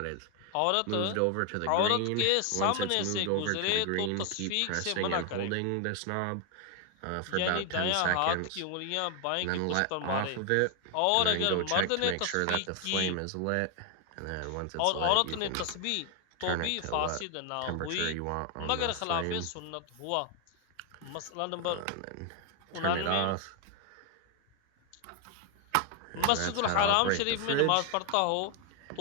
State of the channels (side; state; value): both; different; correlation 0.00